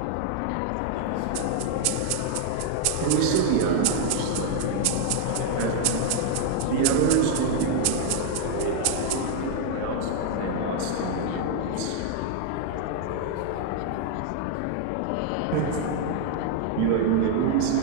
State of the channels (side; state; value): both; different; correlation 0.00